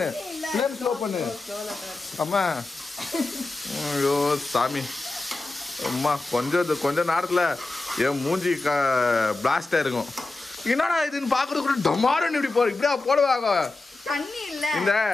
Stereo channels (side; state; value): right; quieter; 3.3 dB